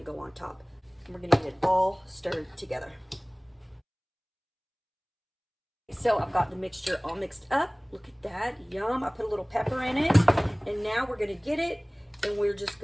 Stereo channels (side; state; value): both; identical; correlation 1.00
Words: to go on top. And we're going to get it all stirred together. So I've got the mixture all mixed up. Look at that, yum. I put a little pepper in it, and now we're going to get it, and we're just